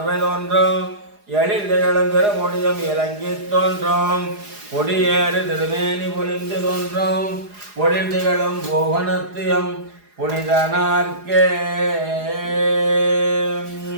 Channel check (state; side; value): late; left; 4.8 ms